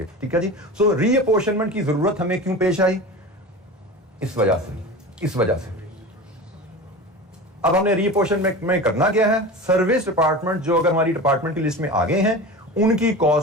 ठीक है जी। सो रीअपोर्शनमेंट की जरूरत हमें क्यों पेश आई, इस वजह से अब हमने रीअपोर्शनमेंट में करना क्या है, सर्विस डिपार्टमेंट जो अगर हमारी डिपार्टमेंट की लिस्ट में आ गए हैं, उनकी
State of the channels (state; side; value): normal; both; correlation 0.31